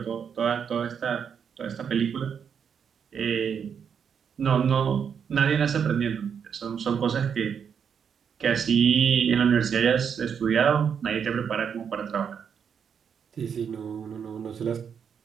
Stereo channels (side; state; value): left; quieter; 7.3 dB